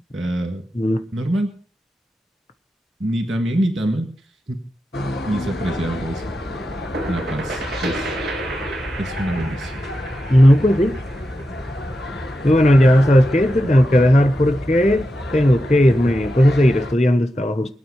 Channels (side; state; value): both; normal; correlation 0.89